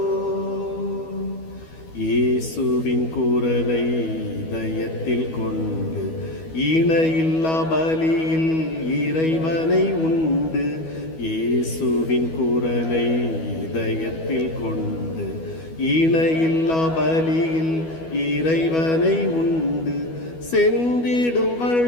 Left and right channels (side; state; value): right; late; 12 ms